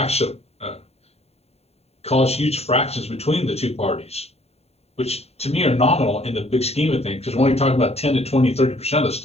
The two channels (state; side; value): late; right; 0.30 ms